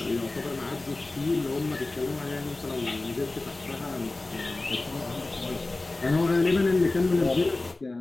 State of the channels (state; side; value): quieter; right; 3.1 dB